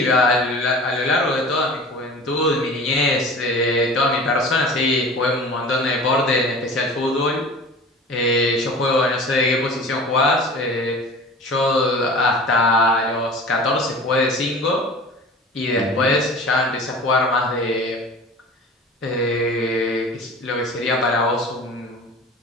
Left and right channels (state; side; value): normal; both; correlation 0.39